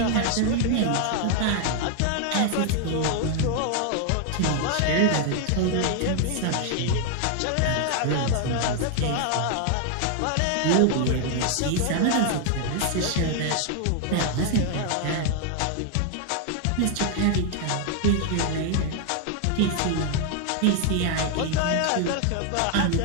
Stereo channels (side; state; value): both; different; correlation 0.00